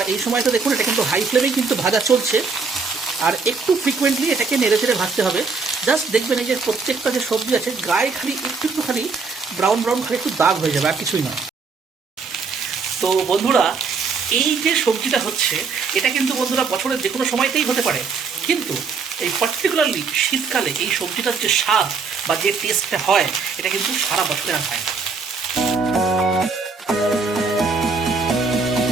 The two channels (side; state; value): left; quieter; 4.8 dB